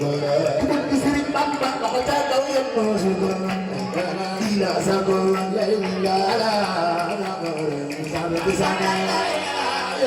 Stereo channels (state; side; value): identical; both; correlation 1.00